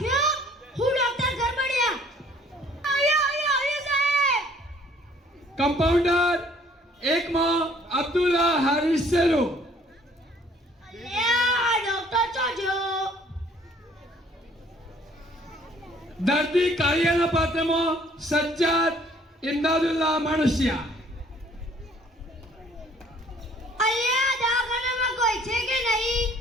હું ડોક્ટર ગરબડિયા. આયો સાહેબ. કમ્પાઉન્ડર એકમાં અબ્દુલ્લા હારિસ શેરો. અલ્યા ડોક્ટર ચોજો. દર્દી કાળિયાના પાત્રમાં સજ્જાદ ઇમદાદુલ્લાહ માણસિયા. અલ્યા દવાખાનામાં કોઈ છે કે નહીં?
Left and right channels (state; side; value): normal; both; correlation 0.58